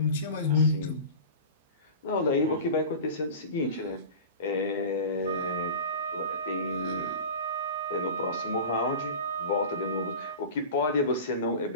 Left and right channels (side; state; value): both; inverted; correlation -0.34